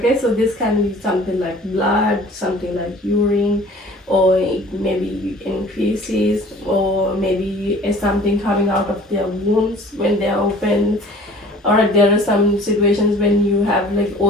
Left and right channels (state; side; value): normal; both; correlation 0.48